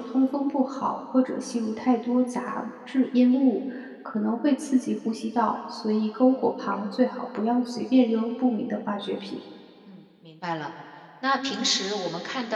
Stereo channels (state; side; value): identical; both; correlation 1.00